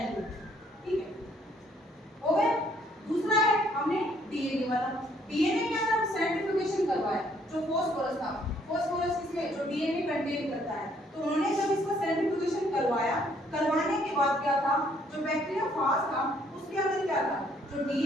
ठीक है, हो गया। दूसरा है हमने डीएनए वाला। डीएनए के अंदर सेंट्रीफ्यूगेशन करवाया, जो फास्फोरस था, फास्फोरस इसमें जो डीएनए कंटेन करता है, तो उन्होंने जब इसका सेंट्रीफ्यूगेशन करवाया, करवाने के बाद क्या था, जो बैक्टीरियोफाज था उसके अंदर क्या था, जो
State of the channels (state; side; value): normal; both; correlation 0.65